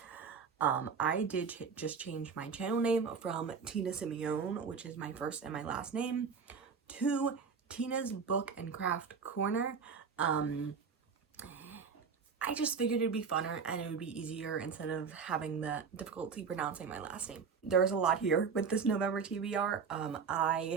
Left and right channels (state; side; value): quieter; left; 5.9 dB